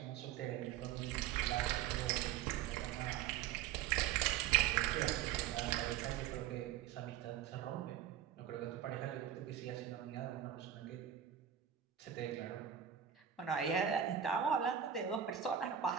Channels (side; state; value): left; quieter; 9.6 dB